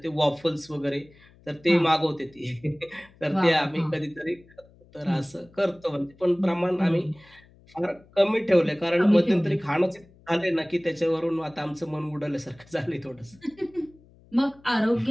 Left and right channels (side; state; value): left; noise; hum, 27 dB below the sound